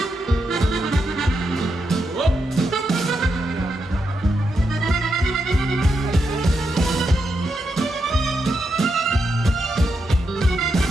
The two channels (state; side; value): normal; both; correlation 0.84